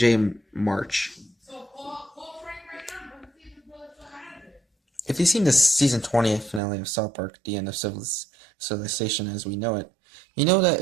March. If you've seen the Season 20 finale of South Park, the end of Civilization as we know it, you know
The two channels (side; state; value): left; drops out; at 6.6 s